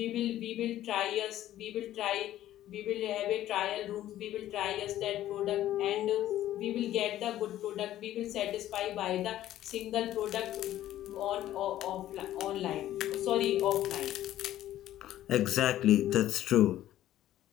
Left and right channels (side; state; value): right; quieter; 13.2 dB